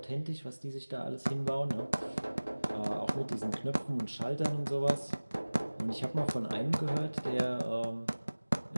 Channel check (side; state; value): both; inverted; correlation -1.00